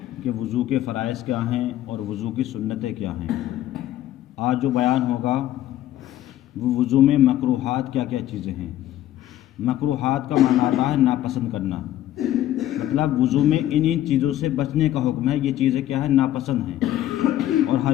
کہ وضو کے فرائض کیا ہیں اور وضو کی سنتیں کیا ہیں۔ آج جو بیان ہوگا وہ وضو میں مکروہات کیا کیا چیزیں ہیں۔ مکروہات کا معنی آتا ہے ناپسند کرنا، مطلب وضو میں ان چیزوں سے بچنے کا حکم ہے۔ یہ چیزیں کیا ہے؟ ناپسند ہیں۔ اور ہر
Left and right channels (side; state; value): right; quieter; 12.9 dB